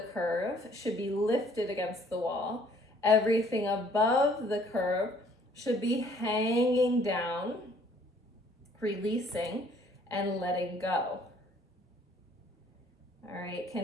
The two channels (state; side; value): normal; both; correlation 0.60